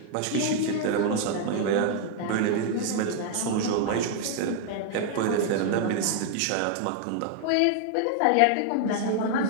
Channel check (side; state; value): both; different; correlation 0.00